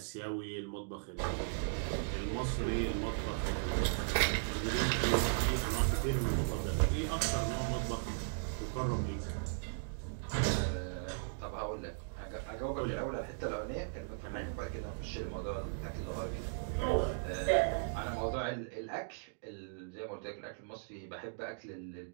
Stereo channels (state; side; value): silent; left; digital silence